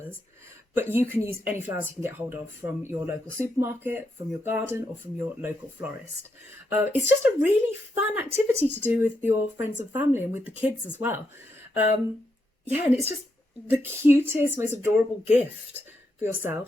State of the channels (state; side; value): normal; both; correlation 0.81